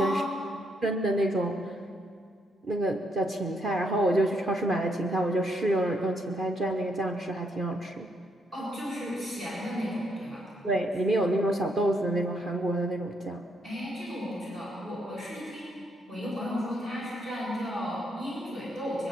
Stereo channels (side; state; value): both; normal; correlation 0.75